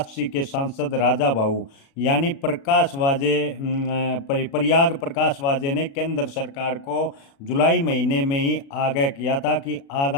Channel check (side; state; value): right; late; 36 ms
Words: के सांसद राजा भाऊ यानी प्रकाश वाजे प्रयाग प्रकाश वाजे ने केंद्र सरकार को जुलाई महीने में ही आगाह किया था कि